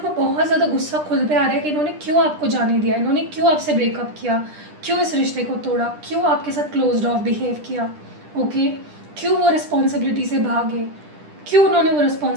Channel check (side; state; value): left; late; 10 ms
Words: को बहुत ज़्यादा गुस्सा खुद पे आ रहा है कि इन्होंने क्यों आपको जाने दिया, इन्होंने क्यों आपसे ब्रेकअप किया, क्यों इस रिश्ते को तोड़ा, क्यों आपके साथ क्लोज्ड ऑफ बिहेव किया, ओके, क्यों वो रिस्पॉन्सिबिलिटी से भागे, क्यों उन्होंने वो